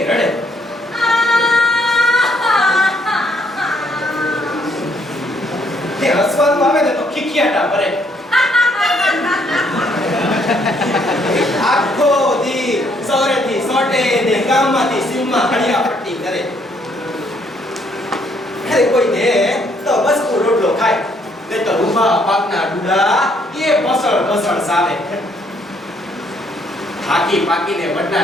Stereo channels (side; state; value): both; normal; correlation 0.68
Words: રડે. તે હસવાનું આવે ને તો ખીખિયાટા ભરે. આખો દી સૌરેથી સોટે ને ગામમાંથી સીમમાં હળિયા પટ્ટી કરે. અરે કોઈ દે તો બસ રોટલો ખાય ને તો રૂપા પાકના ડુડા એ બસળ બસળ સાવે. થાકી પાકીને વડના